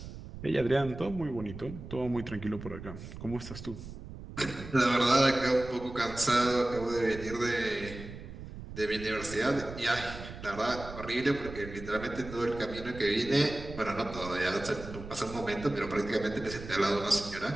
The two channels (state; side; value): noise; right; rumble, 12 dB below the sound